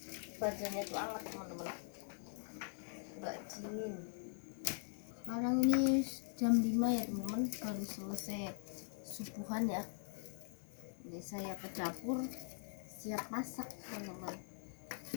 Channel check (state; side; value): silent; right; digital silence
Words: badannya tuh hangat teman-teman, nggak dingin. Sekarang ini jam 5 ya teman-teman, baru selesai subuhan ya. Ini saya ke dapur siap masak teman-teman.